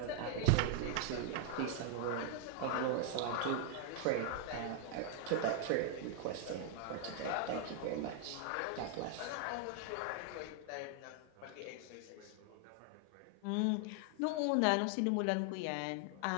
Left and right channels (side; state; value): both; different; correlation 0.00